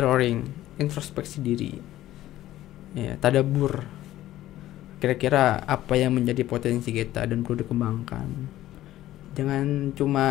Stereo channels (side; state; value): right; quieter; 14.4 dB